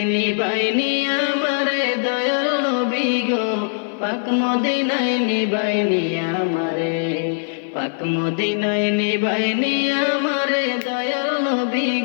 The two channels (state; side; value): silent; right; 63 dB below the other